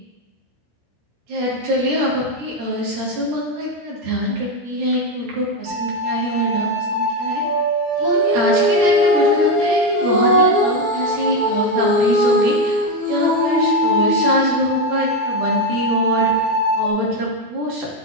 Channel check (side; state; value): left; late; 13 ms